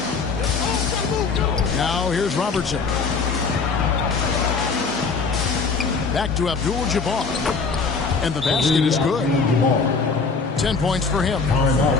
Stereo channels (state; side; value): quieter; right; 4.8 dB